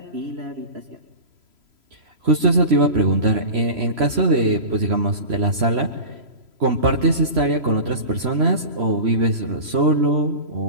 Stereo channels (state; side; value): late; left; 3.0 ms